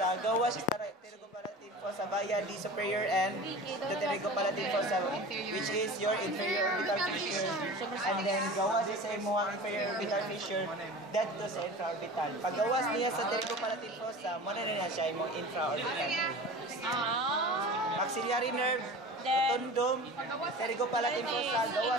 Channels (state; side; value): normal; both; correlation 0.36